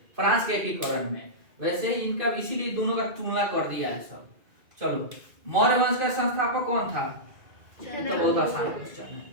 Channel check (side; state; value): left; late; 2.4 ms